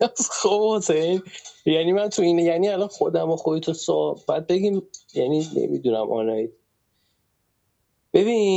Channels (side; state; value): both; identical; correlation 1.00